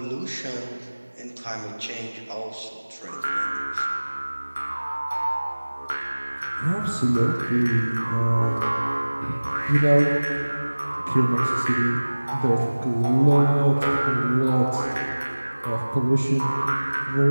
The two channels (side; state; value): both; inverted; correlation -1.00